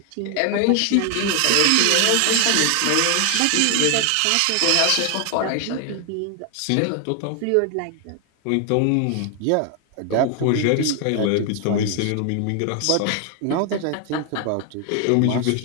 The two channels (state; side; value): different; both; correlation 0.00